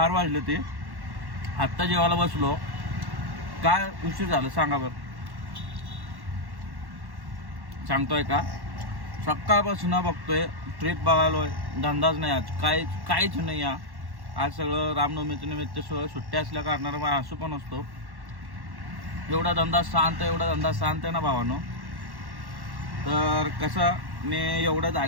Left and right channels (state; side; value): late; left; 1.1 ms